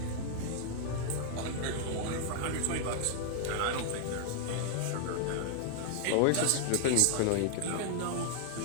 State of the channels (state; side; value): different; both; correlation 0.00